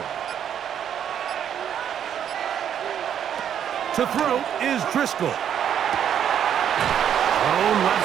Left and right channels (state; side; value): quieter; left; 9.2 dB